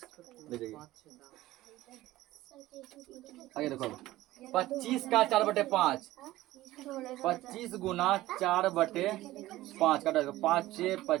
ले जाइए आगे देखो 25 का 4/5। 25 गुना 4/5 काटा, 5 6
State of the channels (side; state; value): left; quieter; 16.4 dB